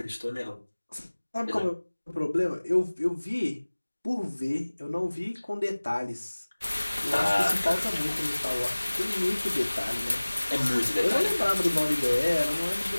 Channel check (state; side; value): inverted; both; correlation -1.00